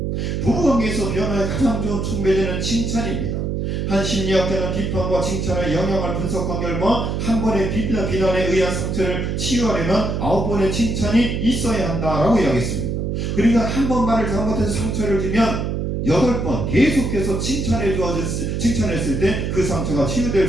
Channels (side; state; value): right; noise; hum, 1 dB below the sound